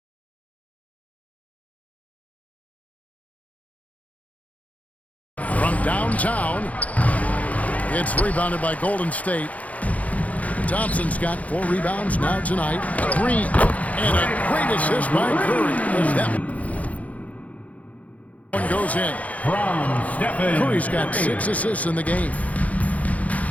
From downtown, it's rebounded by Golden State. Thompson's got 4 rebounds now tonight. Green, and a great assist by Curry. As that one goes in. From Stephen Curry's got 6 assists in the game.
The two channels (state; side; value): late; right; 0.070 ms